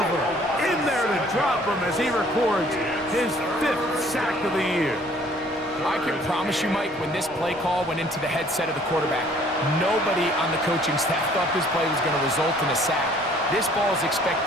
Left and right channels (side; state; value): both; normal; correlation 0.57